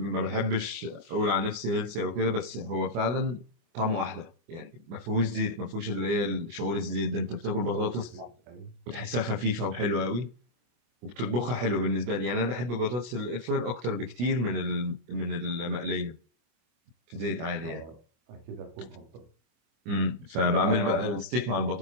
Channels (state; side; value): late; left; 25 ms